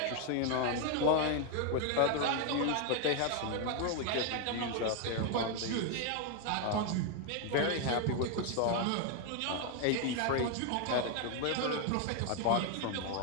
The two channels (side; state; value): both; different; correlation 0.01